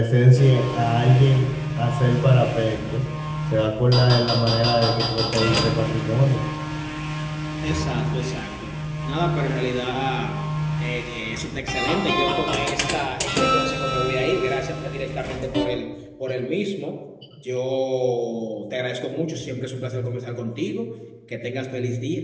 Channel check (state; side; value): identical; both; correlation 1.00